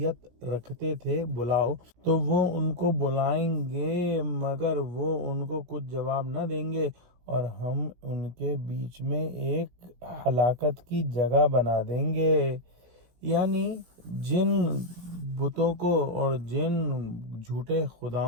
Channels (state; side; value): late; left; 17 ms